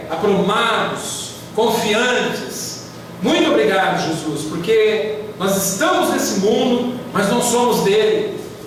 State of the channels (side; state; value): both; identical; correlation 1.00